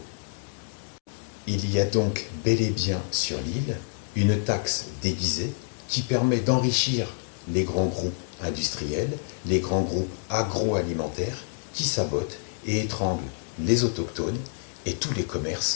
Il y a donc bel et bien sur l'île une taxe déguisée qui permet d'enrichir les grands groupes industriels, les grands groupes agroalimentaires qui sabotent et étranglent les autochtones et tous les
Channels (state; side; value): silent; right; digital silence